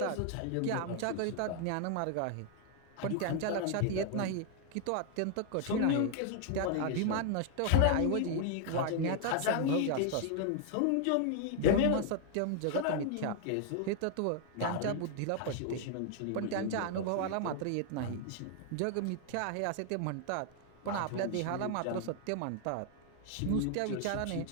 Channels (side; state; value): both; different; correlation 0.00